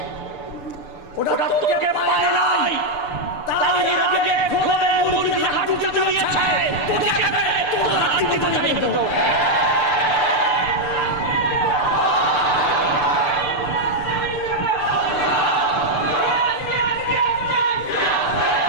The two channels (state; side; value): late; right; 6.8 ms